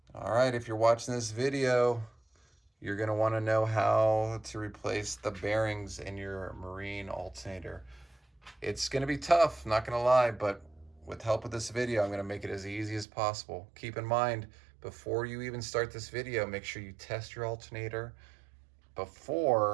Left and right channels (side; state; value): left; drops out; at 13.1 s